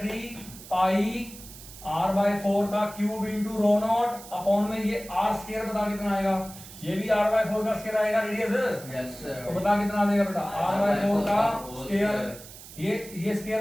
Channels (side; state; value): right; noise; hiss, 16 dB below the sound